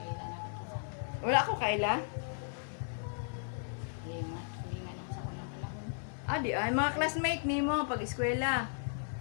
Kailan ako. Wala ko kaila? Hindi nga. Hindi nga naman sa unang panahon. Di ay mga classmate nimo pag eskwela.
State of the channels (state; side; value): silent; right; 54 dB below the other